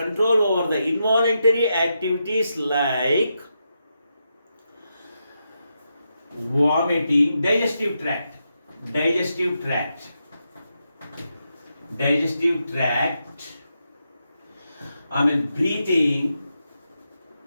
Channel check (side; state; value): both; inverted; correlation -0.85